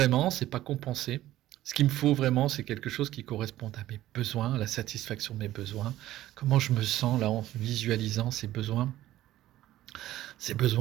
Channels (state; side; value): quieter; left; 14.5 dB